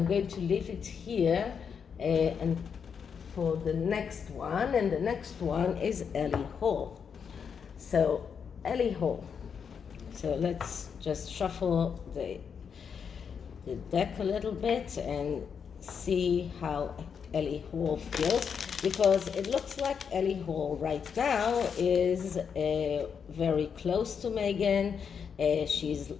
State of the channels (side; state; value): right; quieter; 6.8 dB